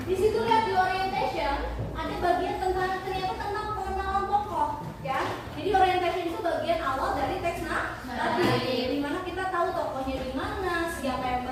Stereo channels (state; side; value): identical; both; correlation 1.00